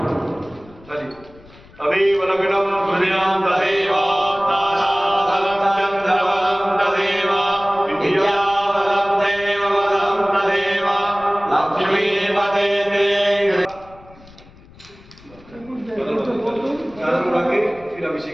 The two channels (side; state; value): left; noise; rumble, 23 dB below the sound